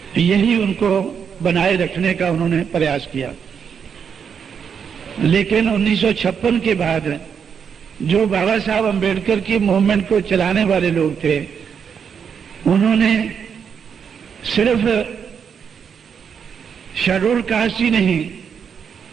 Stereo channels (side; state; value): left; quieter; 7.1 dB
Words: यही उनको बनाए रखने का उन्होंने प्रयास किया। लेकिन 1956 के बाद जो बाबा साहब अंबेडकर की मूवमेंट को चलाने वाले लोग थे, उन्होंने सिर्फ शेड्यूल कास्ट ही नहीं